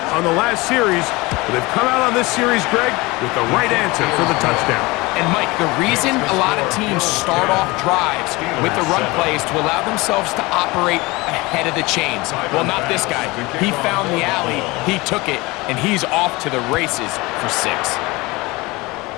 on the last series, but they've come out on this series, Greg, with the right answer for the touchdown. And Mike, the reason a lot of teams start off drives with the run plays to allow themselves to operate ahead of the chains. Well, not this guy. He found the alley, he took it, and he's off to the races for 6.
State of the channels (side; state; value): right; quieter; 22.9 dB